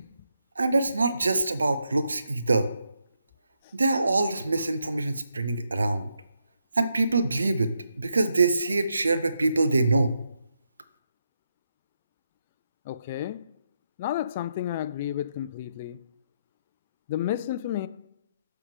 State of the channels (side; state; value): both; inverted; correlation -0.81